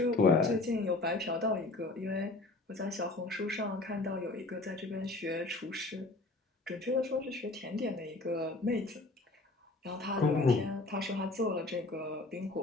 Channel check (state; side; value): quieter; right; 3.1 dB